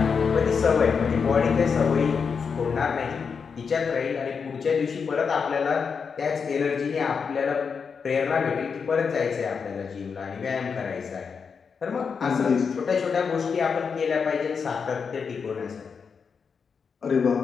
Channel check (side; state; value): right; quieter; 5.9 dB